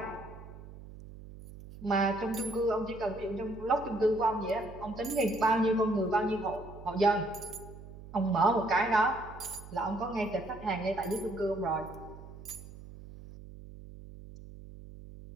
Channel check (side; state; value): right; noise; hum, 15 dB below the sound